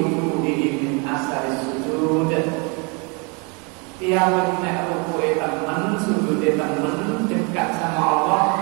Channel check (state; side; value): quieter; left; 32.1 dB